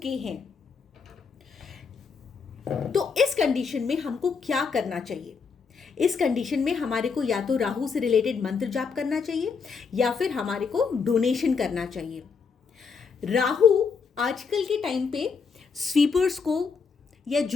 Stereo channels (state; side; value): quieter; right; 5.4 dB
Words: हैं। तो इस कंडीशन में हमको क्या करना चाहिए? इस कंडीशन में हमारे को या तो राहु से रिलेटेड मंत्र जाप करना चाहिए या फिर हमारे को डोनेशन करना चाहिए। राहु आजकल के टाइम पे स्वीपर्स को या